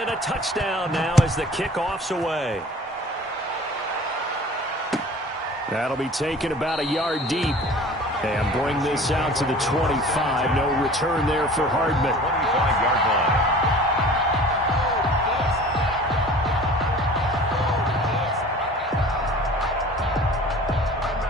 a touchdown now as the kickoff's away. That'll be taken about a yard deep. And bring this out to the 25. No return there for Hardman. 25-yard line.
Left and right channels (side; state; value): both; normal; correlation 0.44